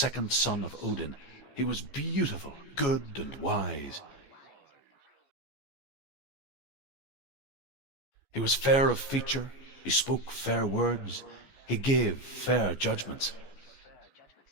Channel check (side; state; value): right; late; 14 ms